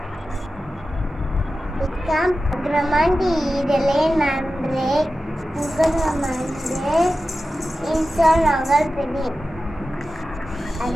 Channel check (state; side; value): normal; both; correlation 0.93